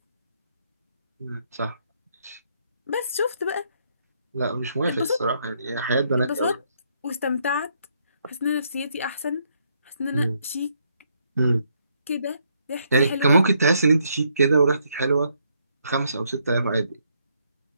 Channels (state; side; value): inverted; both; correlation -0.72